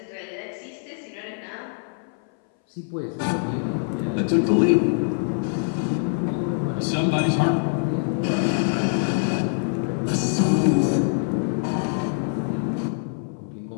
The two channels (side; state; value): right; silent; 61 dB below the other